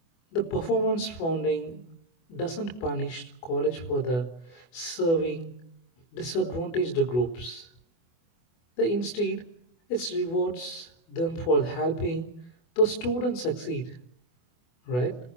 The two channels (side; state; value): right; late; 24 ms